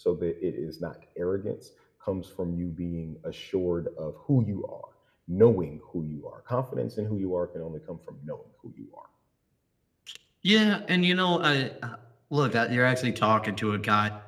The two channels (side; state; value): both; identical; correlation 1.00